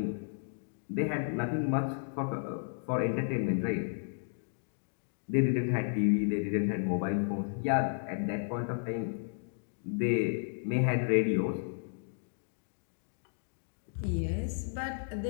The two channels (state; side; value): silent; right; digital silence